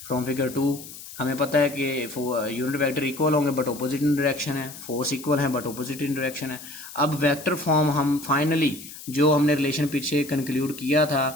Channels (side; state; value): left; noise; hiss, 14 dB below the sound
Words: फ्रॉम फिगर 2, हमें पता है कि यूनिट वेक्टर इक्वल होंगे बट ऑपोजिट इन डायरेक्शन है, फोर्स इक्वल है बट ऑपोजिट इन डायरेक्शन है। अब वेक्टर फॉर्म हम फाइनली जो हमने रिलेशन पीछे कंक्लूड किया